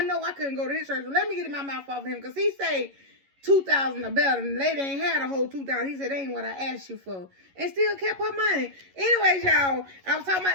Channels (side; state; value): left; late; 11 ms